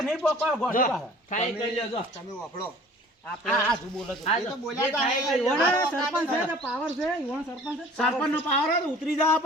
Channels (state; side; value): normal; both; correlation 0.48